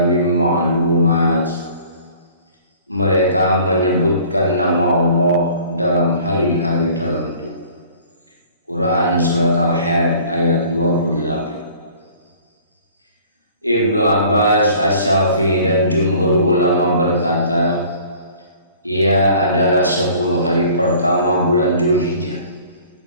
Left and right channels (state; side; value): inverted; both; correlation -0.51